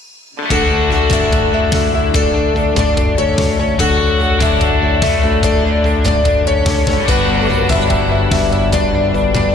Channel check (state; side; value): normal; both; correlation 0.69